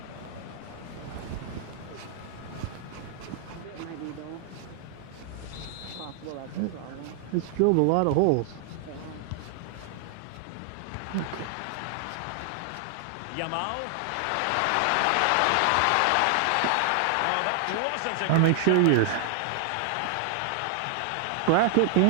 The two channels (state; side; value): different; both; correlation 0.00